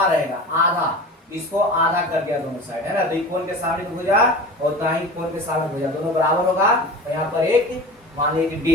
रहेगा, आधा इसको आधा कर दिया दोनों साइड, है ना। तो कोण के सामने की भुजा और उतना ही कोण के सामने भुजा दोनों बराबर होगा। तो यहाँ पर एक मान लीजिए कि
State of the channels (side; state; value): both; normal; correlation 0.35